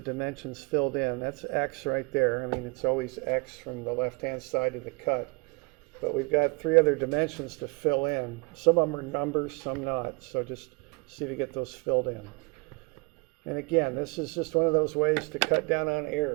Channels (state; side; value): quieter; left; 29.8 dB